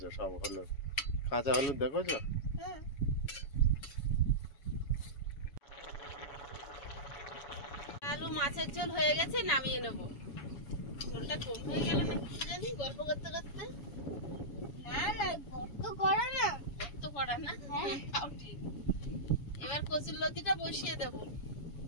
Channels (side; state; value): right; late; 7.2 ms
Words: সব হলুদ, কাঁচা হলুদ দেখেছো? হুম আলু মাছের ঝোল হয়ে গেছে, নামিয়ে নেব। ঝোলটা কম হয়ে গেল না কি জানি গল্প করতে করতে। না না গর্ত করা না। তো পড়া না, হ্যাঁ। তাও ঠিক। এবার কচুর লতিটা বসিয়ে দেব।